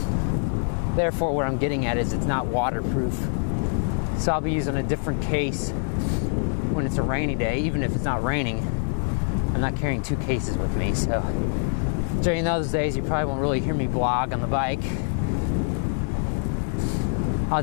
Therefore, what I'm getting at is it's not waterproof. So I'll be using a different case when it's a rainy day, even if it's not raining. I'm not carrying 2 cases with me, so during those days you probably won't really hear me blog on the bike. I'll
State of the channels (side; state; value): right; silent; 62 dB below the other